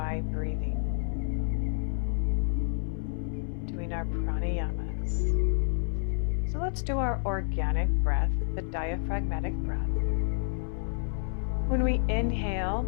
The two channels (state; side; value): silent; right; 58 dB below the other